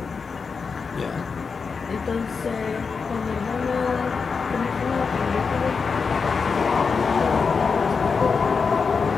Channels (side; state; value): right; quieter; 5.2 dB